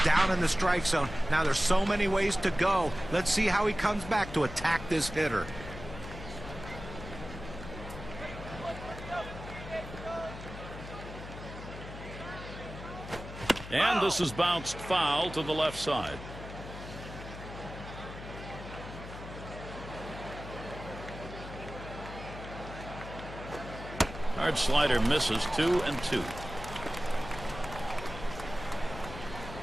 down in the strike zone. Now there's so many ways to go. Let's see how he comes back to attack this hitter. And this is bounced foul to the left side. Hard slider misses. 2-2.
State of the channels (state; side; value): noise; left; hum, 11 dB below the sound